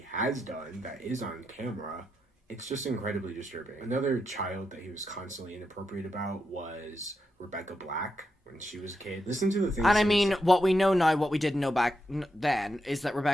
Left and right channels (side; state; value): both; normal; correlation 0.84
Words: has done that is on camera, it's just incredibly disturbing. Another child that he was constantly inappropriate about was Rebecca Black when she was a kid. Listen to the things. And I mean, what we know now, what we didn't know back then, is that